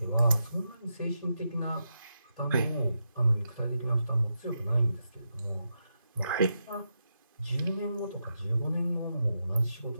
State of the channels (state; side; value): inverted; both; correlation -0.86